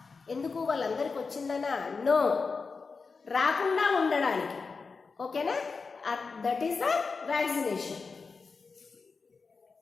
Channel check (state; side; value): quieter; right; 4.7 dB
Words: ఎందుకు? వాళ్ళందరికి వచ్చిందనా? నో, రాకుండా ఉండడానికి. ఓకేనా? That is the vaccination.